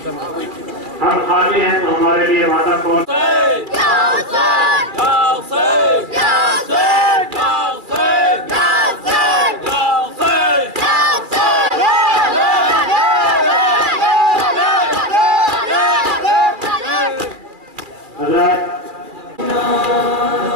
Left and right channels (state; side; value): late; left; 2.3 ms